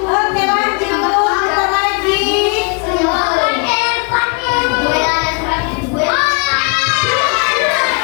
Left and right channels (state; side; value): quieter; right; 36.3 dB